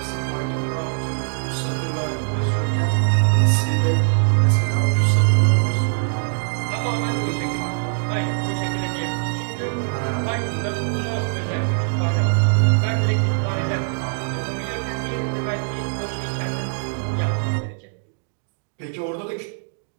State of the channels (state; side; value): silent; left; digital silence